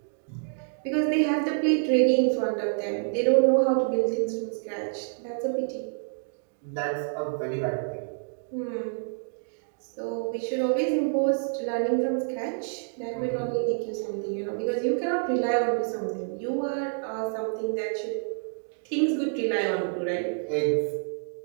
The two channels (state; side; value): silent; left; digital silence